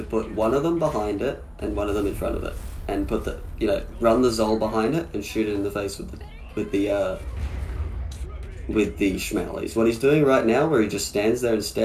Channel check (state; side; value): identical; both; correlation 1.00